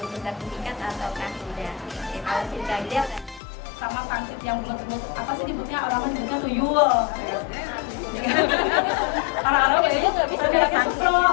sertifikat ataukah tidak. Oke, kalau tidak Sama pangsit yang bulat-bulat, apa sih disebutnya, orang nyebutnya tuyul. Orang-orang kayaknya nggak bisa bilangnya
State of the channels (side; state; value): right; drops out; at 3.4 s